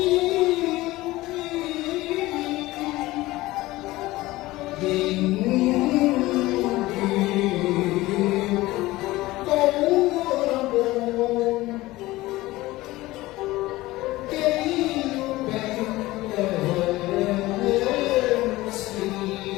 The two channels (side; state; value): right; quieter; 18.6 dB